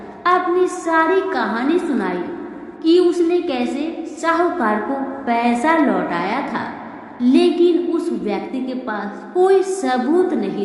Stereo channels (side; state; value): both; identical; correlation 1.00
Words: अपनी सारी कहानी सुनाई कि उसने कैसे साहूकार को पैसा लौटाया था, लेकिन उस व्यक्ति के पास कोई सबूत